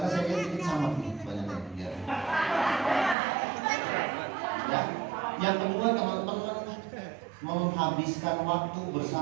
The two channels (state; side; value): drops out; left; at 3.2 s